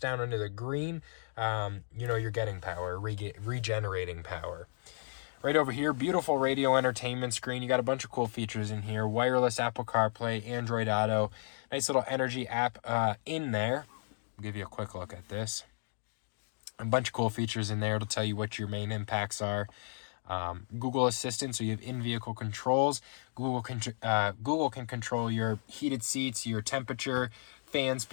down into the green, you know you're getting power, regenerating power. Right over here, beautiful radio entertainment screen. You got a bunch of cool features in here. Wireless Apple CarPlay, Android Auto. Nice little energy app in there. I'll give you a quick look at this. A bunch of cool features in there. It'll tell you what your main impacts are. Google Assistant, so you have in-vehicle controls. Google can control your heated seats, your temperature, fan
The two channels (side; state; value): right; silent; digital silence